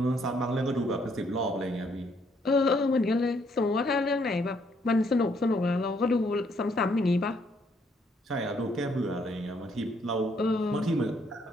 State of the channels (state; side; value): normal; both; correlation 0.69